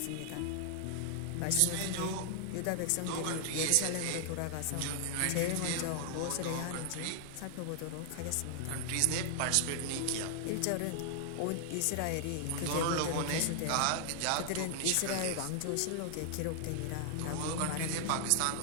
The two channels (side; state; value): both; different; correlation 0.00